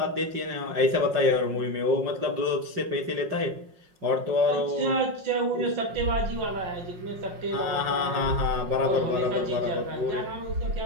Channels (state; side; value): late; left; 5.5 ms